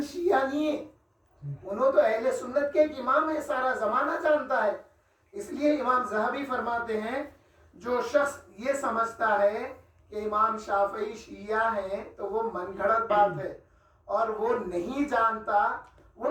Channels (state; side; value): identical; both; correlation 1.00